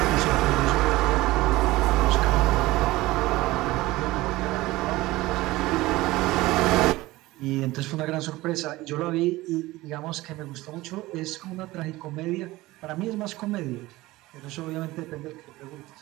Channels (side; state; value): left; quieter; 18.9 dB